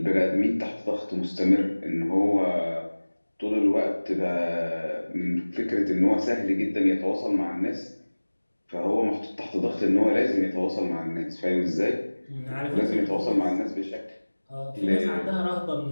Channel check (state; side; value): inverted; both; correlation -1.00